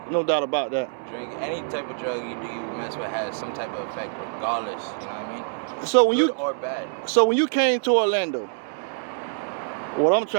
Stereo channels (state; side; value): silent; left; 62 dB below the other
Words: no doubt about that. Drink any type of drug you do, you mess with has some type of effect, regardless. You know what I mean? So when Good or bad. So when you came to Orlando, what I'm